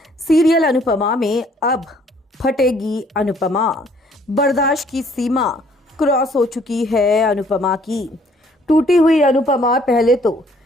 serial Anupama में अब फटेगी अनुपमा। बर्दाश्त की सीमा क्रॉस हो चुकी है अनुपमा की। टूटी हुई अनुपमा पहले तो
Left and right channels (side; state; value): both; normal; correlation 0.62